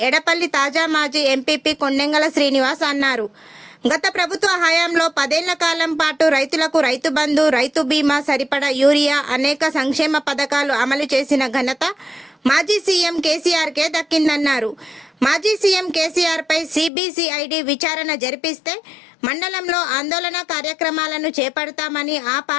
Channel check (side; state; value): right; drops out; at 16.9 s